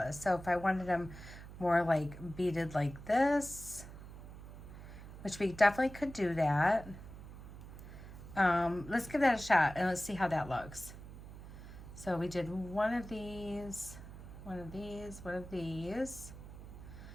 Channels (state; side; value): noise; right; hum, 14 dB below the sound